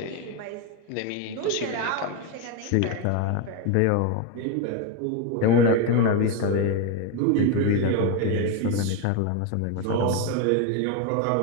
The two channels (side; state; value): both; different; correlation 0.02